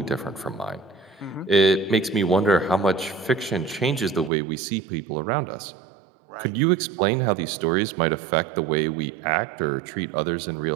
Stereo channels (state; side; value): drops out; left; at 4.3 s